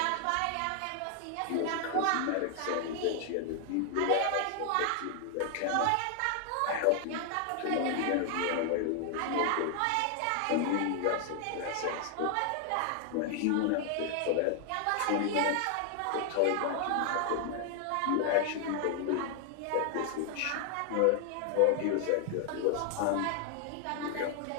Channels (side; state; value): both; different; correlation 0.00